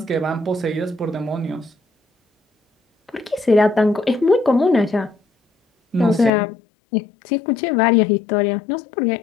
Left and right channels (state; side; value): drops out; right; at 6.3 s